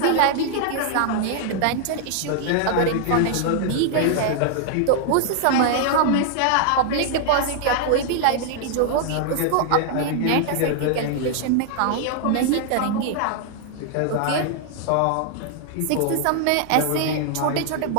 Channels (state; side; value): different; both; correlation -0.01